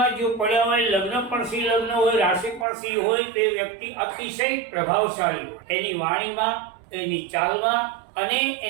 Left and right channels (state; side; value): drops out; left; at 2.7 s